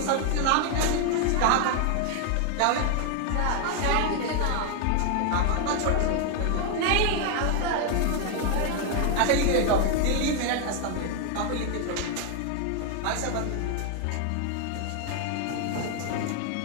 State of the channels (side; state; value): both; different; correlation 0.00